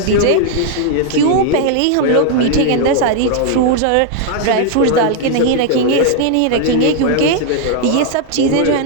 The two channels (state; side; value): different; both; correlation 0.00